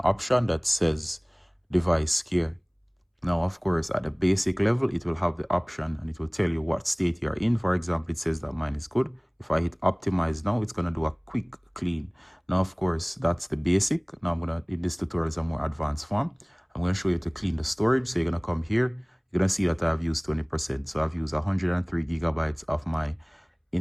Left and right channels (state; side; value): identical; both; correlation 1.00